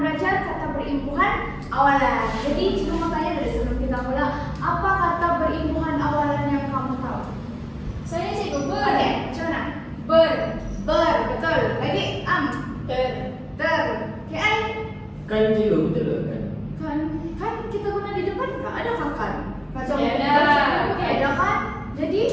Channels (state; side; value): identical; both; correlation 1.00